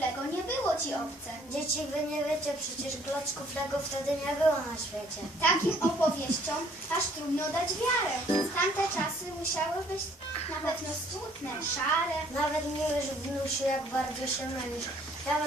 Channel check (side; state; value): both; normal; correlation 0.61